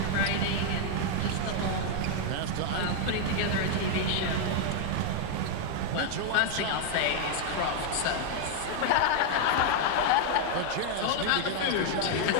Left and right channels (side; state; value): both; different; correlation 0.00